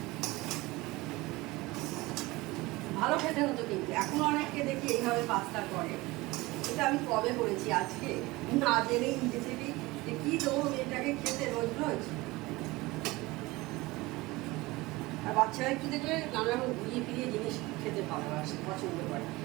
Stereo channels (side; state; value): left; quieter; 21.2 dB